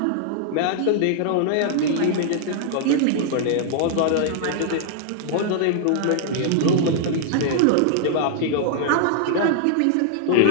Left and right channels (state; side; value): different; both; correlation 0.00